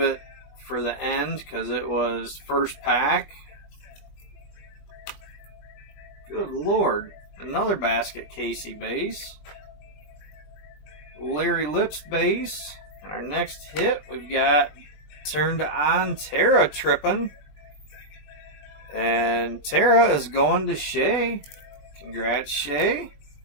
for the end because it was first pack. Good Lord. Another Basket Casey base. Larry Lips base. And our next hit, we've got Turned On Tara Trippin'. And Tara is going to Shay. Congrats, Shay.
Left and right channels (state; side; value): late; right; 20 ms